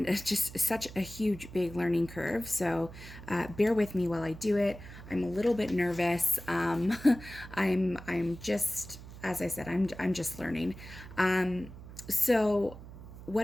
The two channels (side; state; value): right; noise; hum, 15 dB below the sound